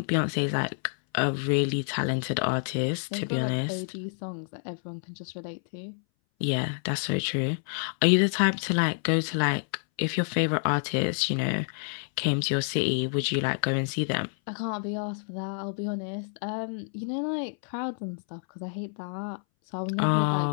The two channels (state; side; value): silent; right; 59 dB below the other